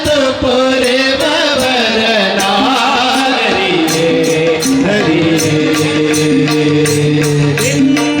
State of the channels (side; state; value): both; identical; correlation 1.00